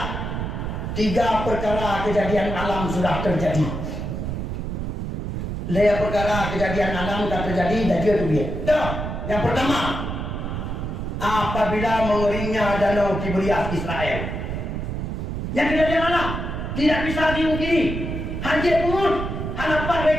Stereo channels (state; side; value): noise; right; rumble, 4 dB below the sound